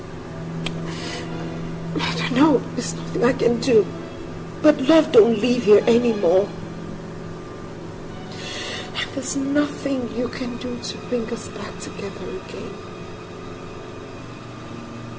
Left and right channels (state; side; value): identical; both; correlation 1.00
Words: I don't know, there's nothing I can do. But love don't live here anymore. And there's nothing you can do to bring us back together again.